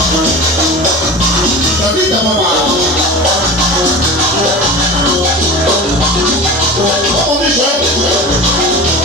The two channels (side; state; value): both; normal; correlation 0.32